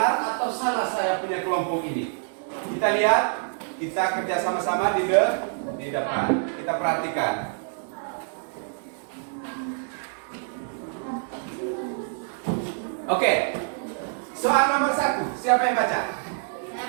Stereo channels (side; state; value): left; silent; digital silence